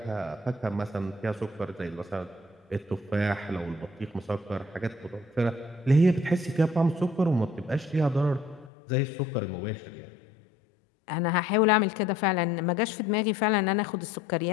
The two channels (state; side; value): drops out; right; at 8.7 s